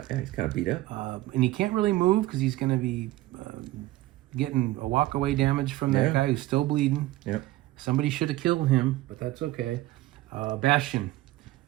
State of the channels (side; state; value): left; quieter; 17.2 dB